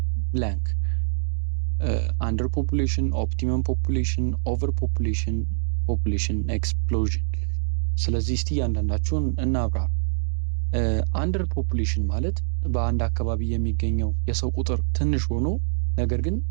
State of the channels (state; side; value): silent; left; digital silence